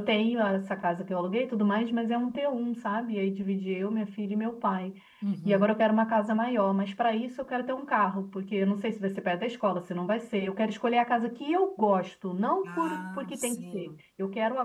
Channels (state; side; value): identical; both; correlation 1.00